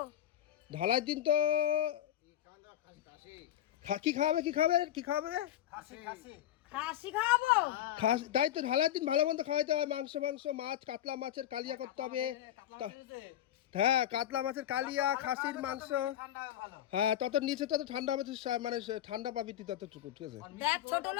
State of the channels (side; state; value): right; quieter; 11.9 dB